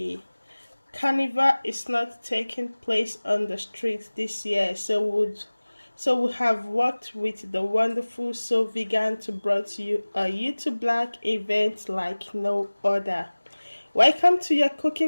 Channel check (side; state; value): both; inverted; correlation -1.00